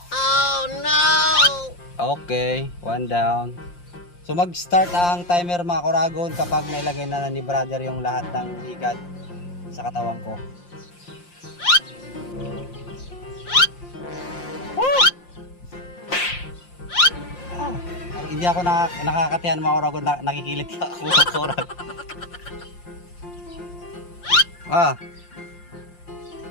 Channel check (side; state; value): right; late; 5.7 ms